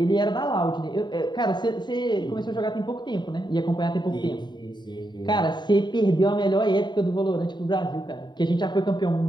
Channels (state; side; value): late; right; 0.21 ms